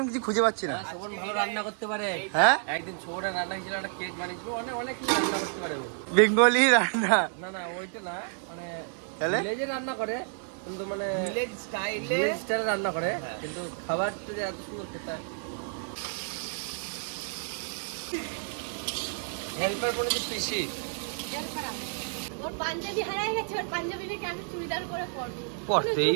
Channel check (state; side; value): silent; left; 58 dB below the other